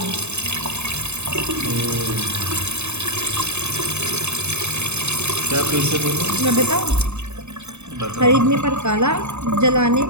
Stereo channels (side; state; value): left; late; 0.82 ms